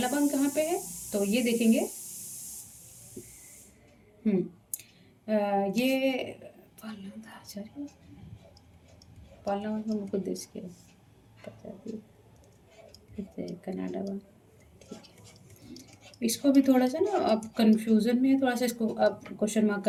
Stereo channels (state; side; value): identical; both; correlation 1.00